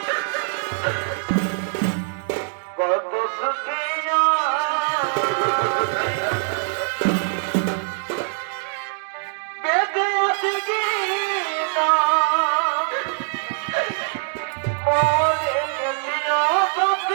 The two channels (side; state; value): left; silent; 64 dB below the other